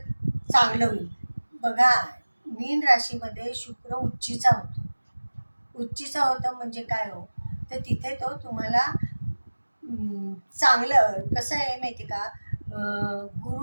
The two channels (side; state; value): both; inverted; correlation -1.00